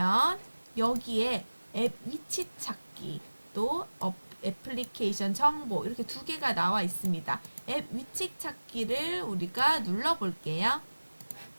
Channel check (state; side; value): inverted; both; correlation -1.00